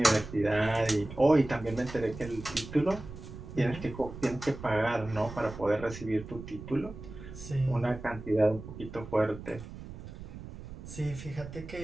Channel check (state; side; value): noise; right; rumble, 13 dB below the sound